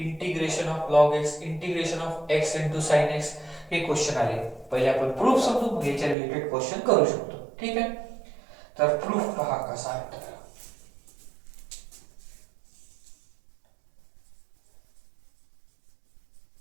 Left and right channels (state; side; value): drops out; left; at 6.2 s